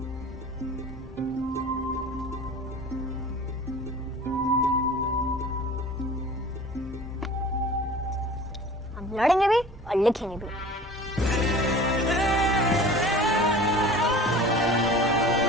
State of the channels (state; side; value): normal; both; correlation 0.41